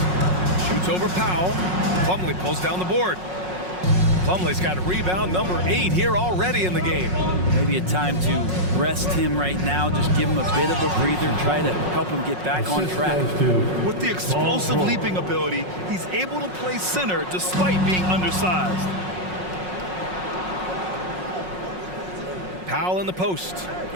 Shoots over Powell. Plumlee pulls down the board. Plumlee's got rebound number 8 here already in the game. Maybe a time to rest him right now. Just give him a bit of a breather. Try to help him get back on track. With the explosive leaping ability, he's able to play center despite being undersized. Powell in the post.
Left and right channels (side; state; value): left; late; 5.5 ms